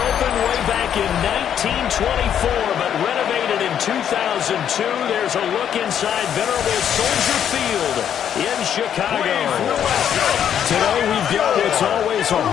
way back in 1924, but renovated in 2002. There's a look inside venerable Soldier Field in Chicago. Today we've got what's always a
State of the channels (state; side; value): quieter; right; 9.2 dB